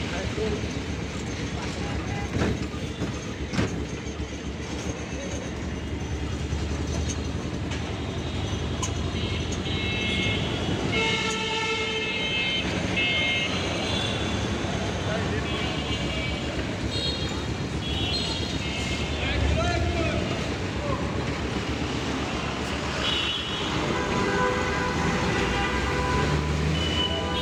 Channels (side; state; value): both; identical; correlation 1.00